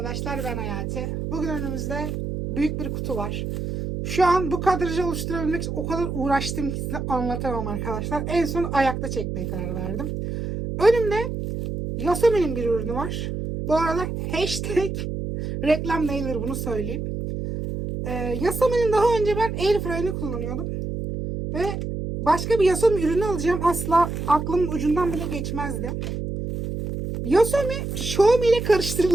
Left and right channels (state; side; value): noise; right; hum, 4 dB below the sound